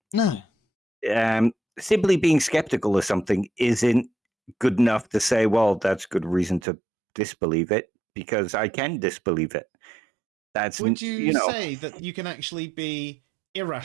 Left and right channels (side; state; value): left; drops out; at 6.6 s